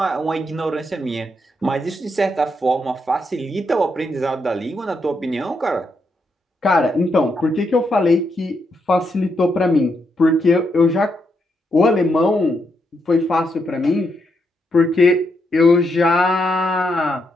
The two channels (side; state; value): both; normal; correlation 0.80